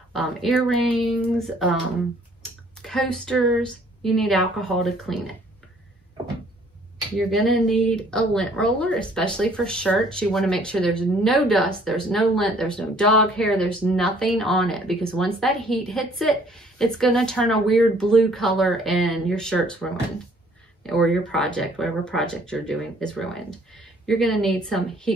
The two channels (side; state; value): both; normal; correlation 0.59